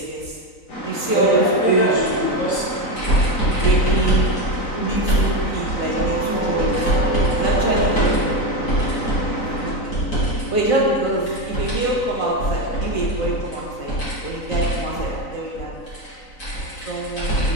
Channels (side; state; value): right; late; 3.9 ms